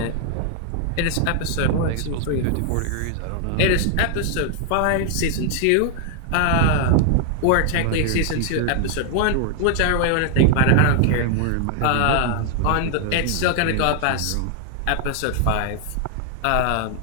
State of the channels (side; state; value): both; different; correlation 0.00